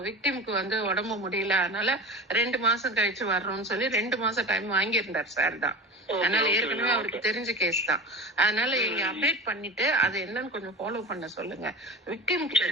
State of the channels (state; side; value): normal; both; correlation 0.31